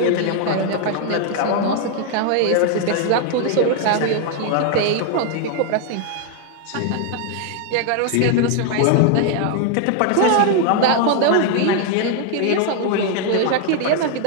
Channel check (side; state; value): both; different; correlation 0.00